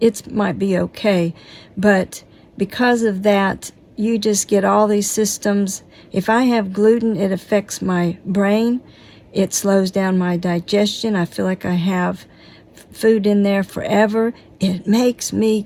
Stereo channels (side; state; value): both; identical; correlation 1.00